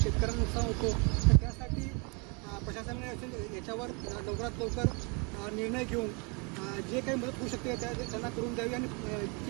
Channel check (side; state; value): left; quieter; 31.8 dB